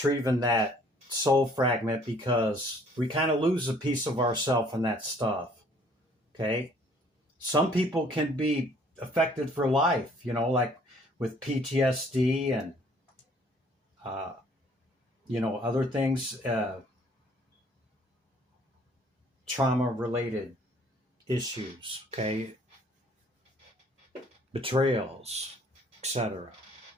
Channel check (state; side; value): normal; both; correlation 0.59